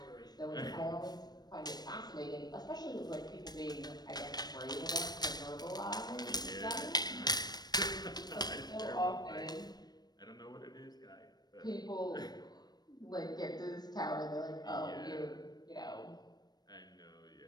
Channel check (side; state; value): right; late; 0.19 ms